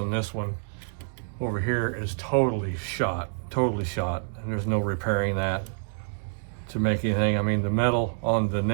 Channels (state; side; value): silent; left; digital silence